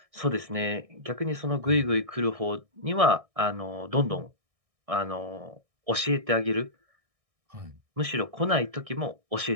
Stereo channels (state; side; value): late; left; 1.6 ms